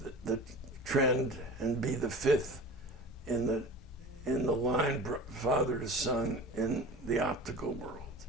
trend and be the 5th in the line, father to son, in the optical world.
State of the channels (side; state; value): both; normal; correlation 0.37